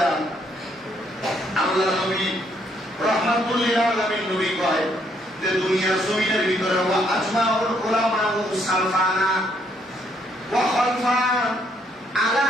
আল্লাহ নবী রাহমাতুল লিল আলামিন নবী কয় যে দুনিয়ার জমিনের ভিতরে ওয়া আজমাউল উলামা সালফানা ওয়া খালফান আলা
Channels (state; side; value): normal; both; correlation 0.71